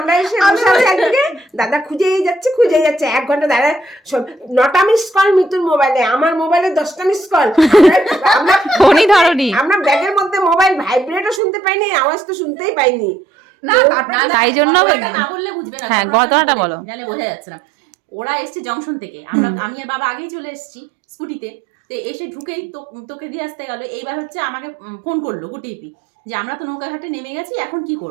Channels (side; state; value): left; drops out; at 11.4 s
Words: এসে বসে আছি, একদিকে দাদা খুঁজেই যাচ্ছে 1 ঘন্টা। দাদা 9টা মিস কল মিতুর মোবাইলে, আমার মোবাইলে 10টা মিস কল। আমরা ফোনই ধরনি। আমরা ব্যাগের মধ্যে মোবাইল ভাইব্রেটও শুনতে পাইনি, আওয়াজ তো শুনতেই পাইনি। তাই জন্য না বললে বুঝবে না। হ্যাঁ, ঘটনাটা বলো। জানে বোঝা যাচ্ছে না। ওরা এসছে জংশন থেকে, আমি আর বাবা আগেই চলে এসেছি স্কুটিতে। তো এসে ঢুকেই তোকে দিয়ে আসতে গেল। এইবার হচ্ছে আমাকে ফোন করলো গুটিপি যে আমরা তো নৌকাঘাটে নেমে গেছি, এখন কি